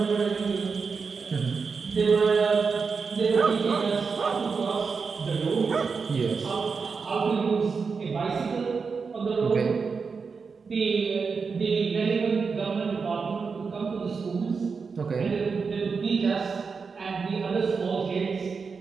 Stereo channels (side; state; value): left; quieter; 5.2 dB